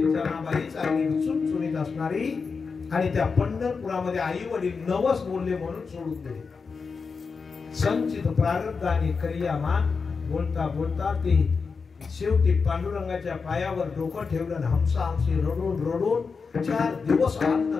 जनाबाई चांगली चुणचुणीत असणारी आणि त्या पंढरपुरामध्ये आई वडील नवस बोलले म्हणून सोडून दिले. संचित प्रारब्धाने क्रियामान बोलता बोलता ती शेवटी पांडुरंगाच्या पायावर डोकं ठेवलं. हमसा हमसी रडून रडून 4 दिवस अन्न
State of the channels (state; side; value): quieter; right; 5.0 dB